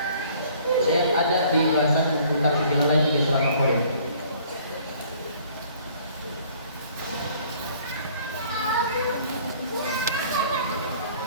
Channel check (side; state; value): both; inverted; correlation -0.56